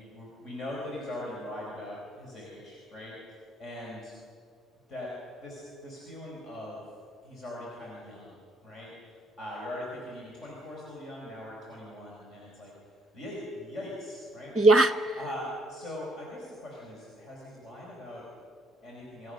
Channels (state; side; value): normal; both; correlation 0.68